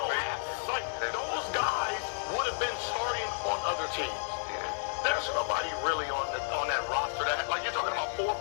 don't have, like, those guys would have been starting on other teams. There's nobody really on that roster that, like, you're talking about 4 or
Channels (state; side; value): silent; right; 57 dB below the other